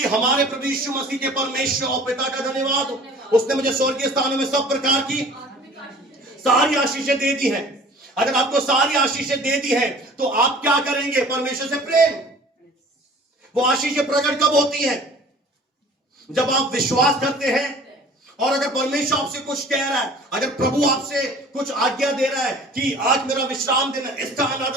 हमारे प्रभु यीशु मसीह के परमेश्वर और पिता का धन्यवाद हो, उसने मुझे स्वर्गीय स्थानों में सब प्रकार की सारी आशीषें दे दी हैं। अगर आपको सारी आशीषें दे दी हैं तो आप क्या करेंगे? परमेश्वर से प्रेम। वो आशीषें प्रकट कब होती हैं? जब आप विश्वास करते हैं, और अगर परमेश्वर आपसे कुछ कह रहा है, अगर प्रभु आपसे कुछ आज्ञा दे रहा है कि आज मेरा विश्राम दिन है, इसका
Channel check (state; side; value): normal; both; correlation 0.47